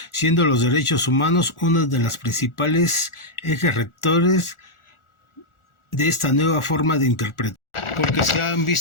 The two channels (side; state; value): right; late; 1.4 ms